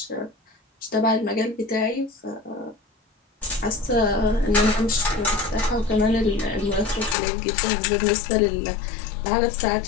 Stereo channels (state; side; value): drops out; right; at 7.2 s